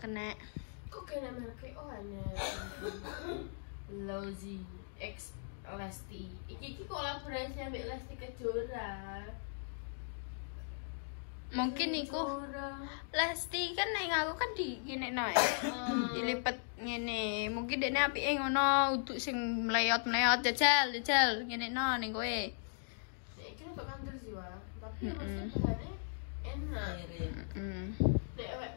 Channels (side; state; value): right; silent; digital silence